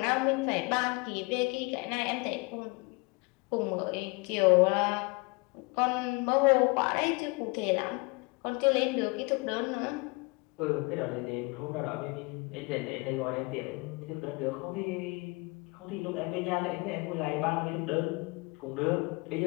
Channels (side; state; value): right; quieter; 28.0 dB